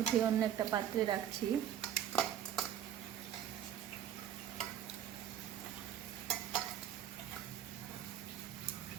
অন্য একটা পাত্রে রাখছি।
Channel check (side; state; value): left; quieter; 10.3 dB